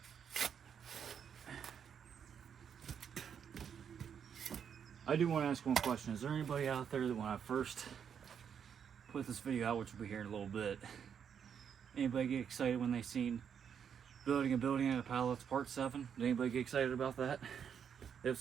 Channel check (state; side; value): quieter; left; 7.7 dB